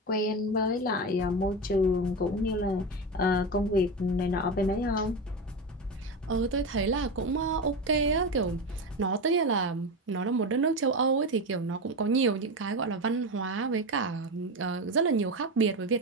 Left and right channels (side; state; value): both; normal; correlation 0.19